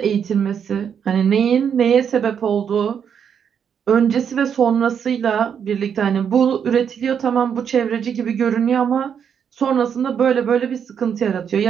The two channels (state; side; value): quieter; left; 7.7 dB